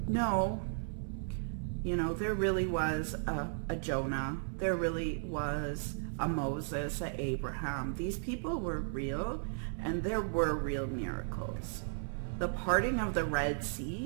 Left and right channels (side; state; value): left; silent; 54 dB below the other